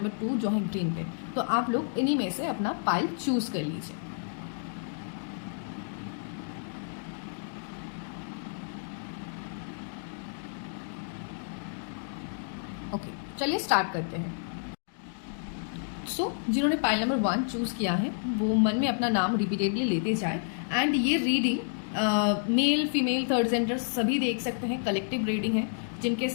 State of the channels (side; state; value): right; silent; digital silence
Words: 2 जो है ग्रीन पेन। तो आप लोग इन्हीं में से अपना पाइल चूज कर लीजिए। ओके, चलिए स्टार्ट करते हैं। जिन्होंने पाइल नंबर 1 चूज किया है वो मन में अपना नाम रिपीटेडली लेते जाए। एंड ये reading male, female, third gender सभी देख सकते हैं। कलेक्टिव रीडिंग है जिनके